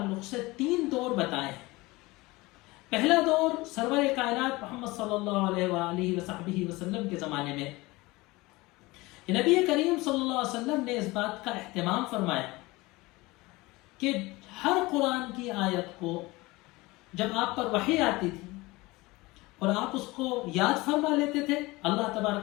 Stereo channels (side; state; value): right; quieter; 21.8 dB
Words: سے 3 دور بتائے ہیں. پہلا دور سرور کائنات محمد صلی اللہ علیہ وآلہ وصحبہ وسلم کے زمانے میں، کہ نبی کریم صلی اللہ علیہ وسلم نے اس بات کا اہتمام فرمایا کہ ہر قرآن کی آیت کو جب آپ پر وحی آتی تھی اور آپ اس کو یاد فرما لیتے تھے، اللہ